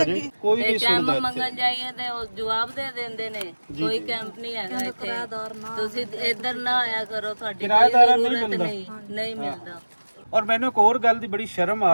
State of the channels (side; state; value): both; inverted; correlation -1.00